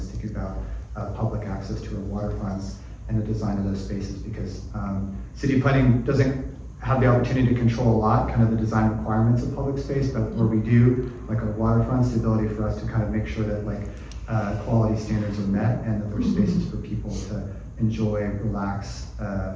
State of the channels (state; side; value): identical; both; correlation 1.00